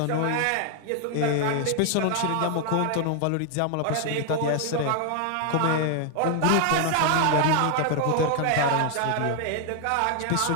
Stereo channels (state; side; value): different; both; correlation 0.00